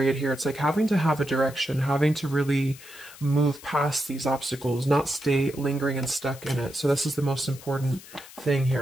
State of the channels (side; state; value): left; noise; hiss, 18 dB below the sound